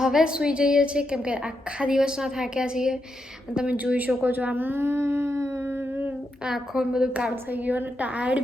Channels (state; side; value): normal; both; correlation 0.83